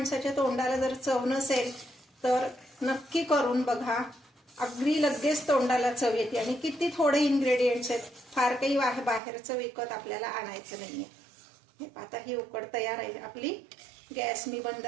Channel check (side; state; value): left; drops out; at 9.2 s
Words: तोंडाला जर चव नसेल तर नक्की करून बघा. अगदी लगेच तोंडाला चव येते आणि किती थोडे इन्ग्रेडियंट्स आहेत. फार काही बाहेरचं विकत आपल्याला आणायचं नाहीये. हे आता ही उकड तयार आहे आपली. गॅस मी बंद